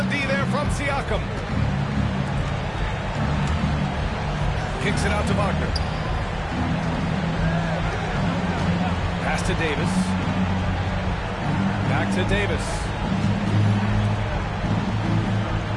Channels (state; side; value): identical; both; correlation 1.00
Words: D there from Siakam. Kicks it out to Wagner. Pass to Davis. Back to Davis.